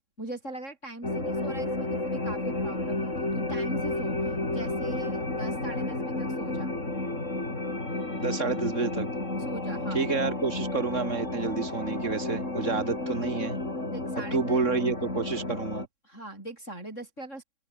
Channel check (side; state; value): right; late; 3.6 ms